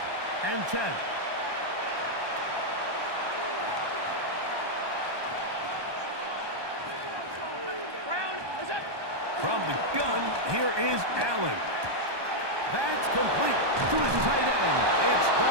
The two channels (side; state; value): left; late; 1.2 ms